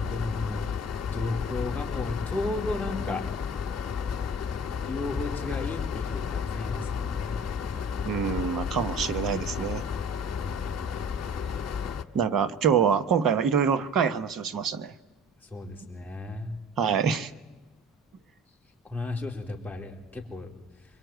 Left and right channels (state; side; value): normal; both; correlation 0.44